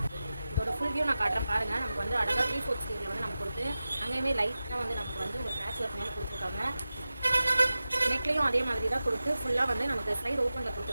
இதோட ஃபுல் வியூ நான் காட்டுறேன் பாருங்கள். நமக்கு வந்து அழகாக 3/4 ஸ்லீவில் வந்து நமக்கு கொடுத்து அங்கேயுமே லைட்டாக வந்து நமக்கு வந்து ஒரு பேட்ச் ஒர்க் மாதிரி கொடுத்துருக்காங்க. நெக்லையும் அதே மாதிரி தான் கொடுத்து ஃபுல்லாக வந்து நமக்கு சைடு ஓப்பனில்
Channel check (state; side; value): inverted; both; correlation -0.94